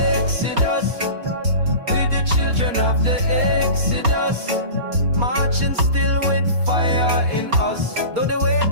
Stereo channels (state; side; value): late; left; 4.3 ms